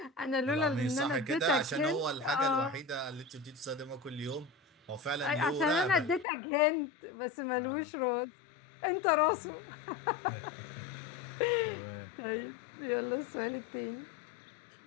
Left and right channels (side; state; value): right; drops out; at 6.2 s